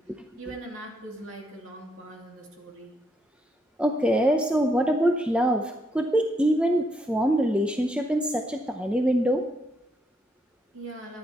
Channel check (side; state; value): both; normal; correlation 0.76